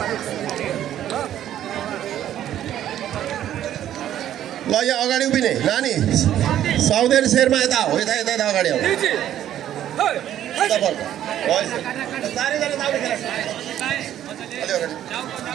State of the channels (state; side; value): quieter; left; 11.5 dB